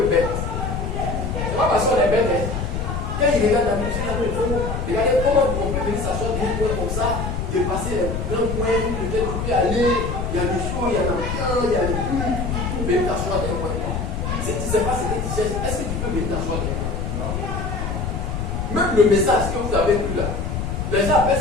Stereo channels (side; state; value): left; noise; rumble, 3 dB below the sound